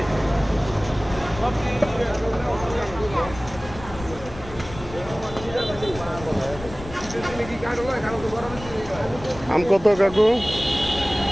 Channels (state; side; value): noise; left; rumble, 14 dB below the sound